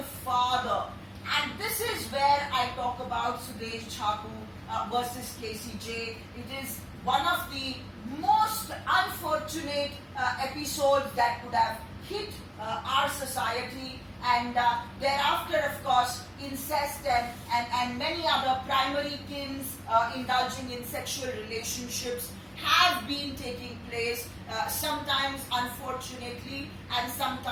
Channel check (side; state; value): both; identical; correlation 1.00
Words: father. And this is where I talk about Sudesh Chaku versus KCJ. It is one of the most unfortunate episodes that could have hit our society, and thereafter, of course, incest and many other primary kins indulging in sexual relationships have been taking place, sometimes unfortunately and